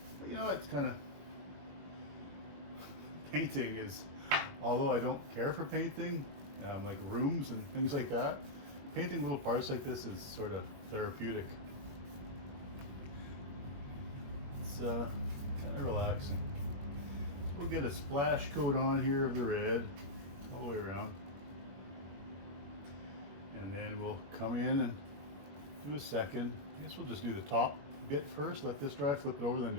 But you know, it's kind of, painting is, although I don't care for painting, like rooms and things like that, painting little parts like this is sort of therapeutic. It's kind of relaxing. We'll get a splash coat on here of the red all the way around, and then we'll come in and do a second. I guess we'll just do the top bit first, let this dry, flip it over, then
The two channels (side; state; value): left; late; 21 ms